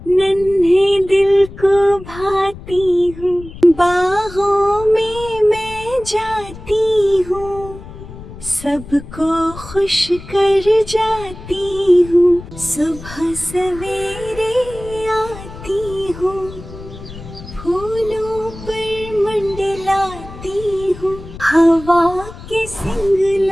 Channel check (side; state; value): left; noise; rumble, 15 dB below the sound